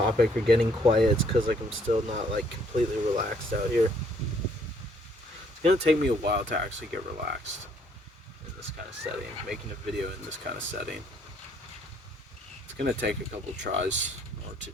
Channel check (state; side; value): normal; both; correlation 0.65